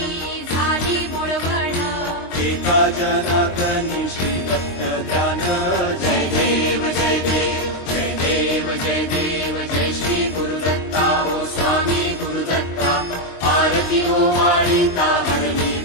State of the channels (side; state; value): right; late; 23 ms